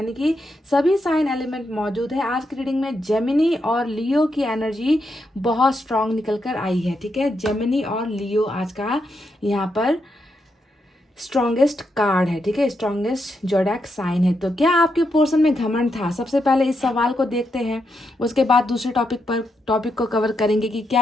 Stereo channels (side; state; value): both; normal; correlation 0.82